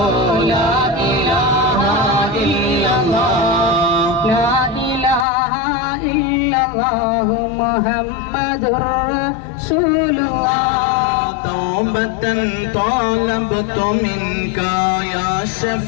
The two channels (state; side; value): drops out; right; at 5.2 s